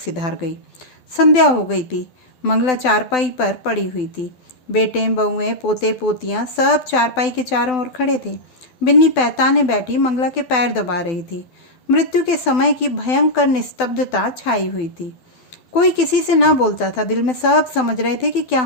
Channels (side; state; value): right; late; 12 ms